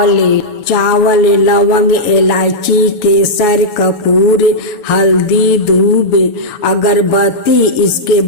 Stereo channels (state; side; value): late; right; 7.0 ms